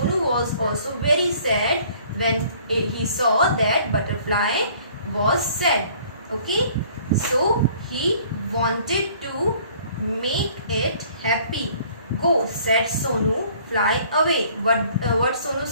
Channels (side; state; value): both; inverted; correlation -0.56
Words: was also very sad when he saw that butterfly was sad. Okay, so he wanted to make it happy. Go, said Sonu, fly away. What Sonu